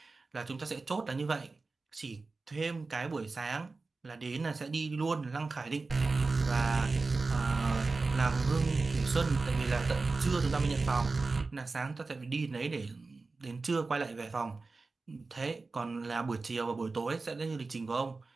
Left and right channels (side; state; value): left; quieter; 3.8 dB